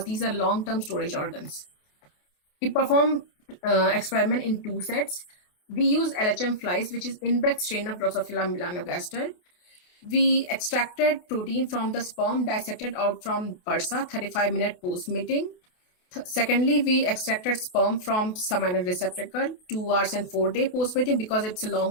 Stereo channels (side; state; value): right; late; 28 ms